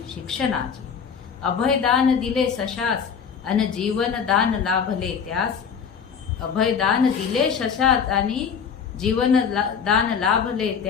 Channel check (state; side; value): quieter; right; 6.7 dB